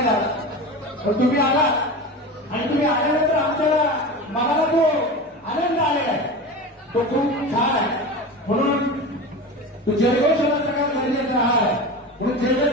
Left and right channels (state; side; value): normal; both; correlation 0.29